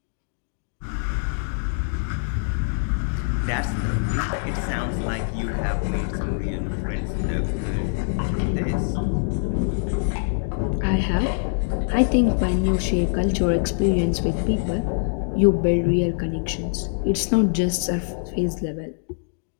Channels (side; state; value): right; silent; digital silence